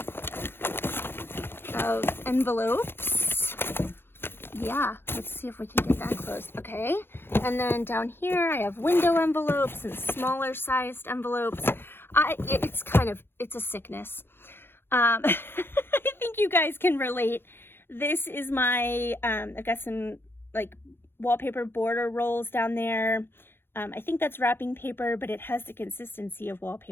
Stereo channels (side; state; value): right; late; 0.11 ms